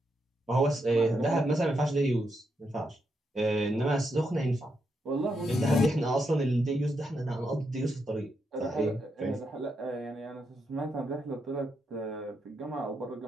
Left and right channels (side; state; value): both; normal; correlation 0.82